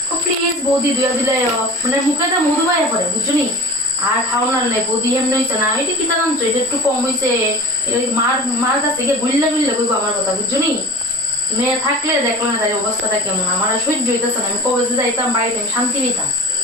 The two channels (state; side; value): normal; both; correlation 0.38